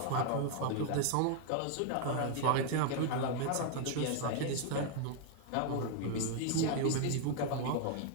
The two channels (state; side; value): different; both; correlation 0.00